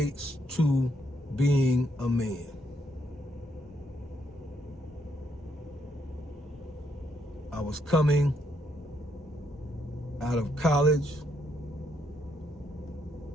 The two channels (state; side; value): normal; both; correlation 0.75